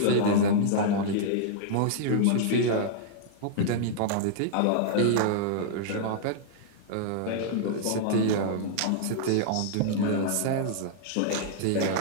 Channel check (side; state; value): both; different; correlation -0.02